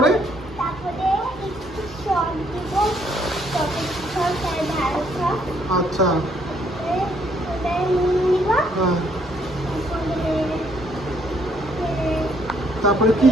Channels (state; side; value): normal; both; correlation 0.69